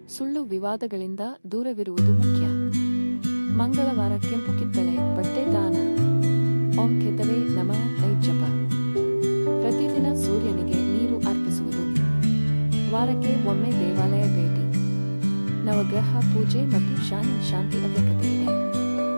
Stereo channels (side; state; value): both; inverted; correlation -1.00